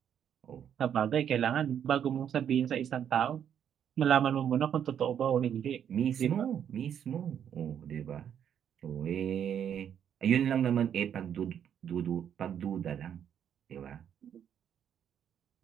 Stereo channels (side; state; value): left; quieter; 9.0 dB